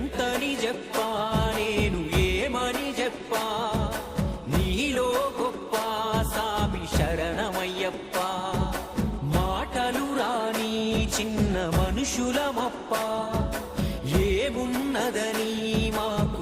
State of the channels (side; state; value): both; identical; correlation 1.00